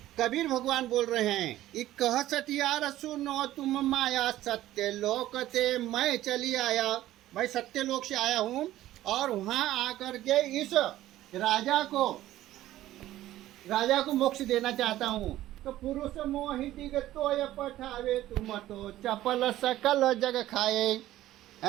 कबीर भगवान बोल रहे हैं, एक कह सटियार सुनो तुम माया, सत्य लोक ते मैं चली आया। मैं सत्य लोक से आया हूँ और वहाँ आकर के इस राजा को मोक्ष देना चाहता हूँ। तो पुरुष मोहिती तो पठावे, तुम तो चपल सकल जग खाए।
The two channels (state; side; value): quieter; left; 14.5 dB